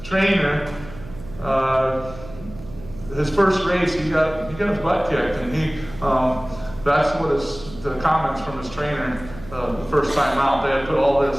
trainer, his first race, he got his butt kicked, and that's what the comments from his trainer the first time out. They had put all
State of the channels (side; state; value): right; noise; hum, 16 dB below the sound